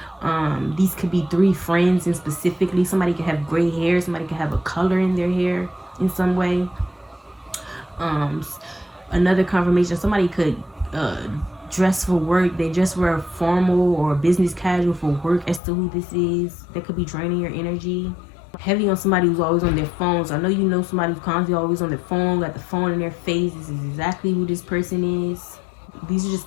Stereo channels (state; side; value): drops out; right; at 15.6 s